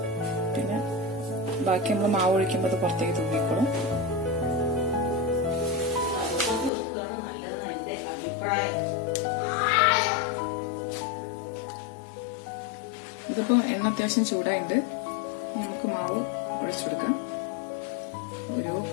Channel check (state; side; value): drops out; right; at 6.7 s